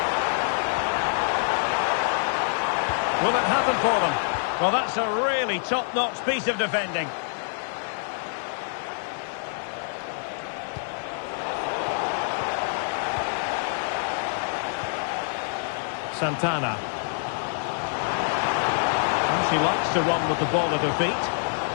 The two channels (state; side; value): silent; right; 61 dB below the other